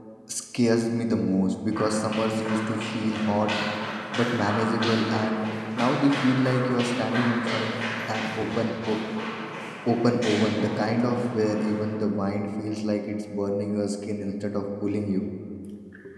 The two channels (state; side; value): identical; both; correlation 1.00